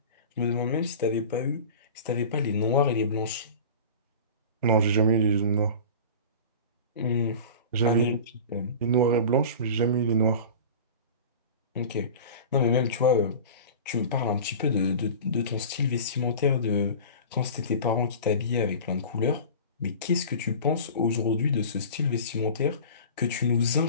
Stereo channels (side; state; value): both; inverted; correlation -0.36